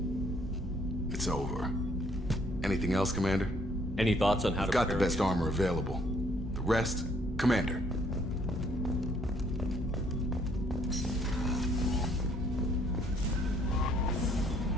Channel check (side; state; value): both; normal; correlation 0.65